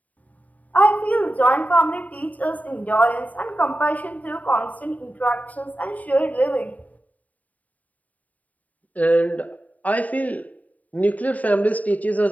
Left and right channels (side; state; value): right; late; 0.073 ms